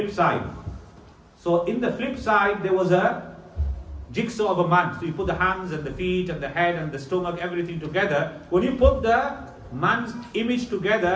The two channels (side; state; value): both; identical; correlation 1.00